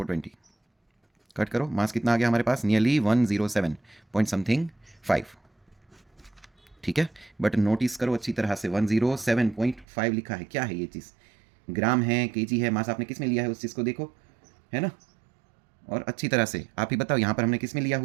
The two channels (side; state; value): left; drops out; at 9.9 s